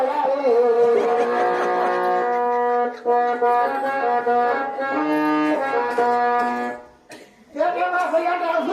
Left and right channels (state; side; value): identical; both; correlation 1.00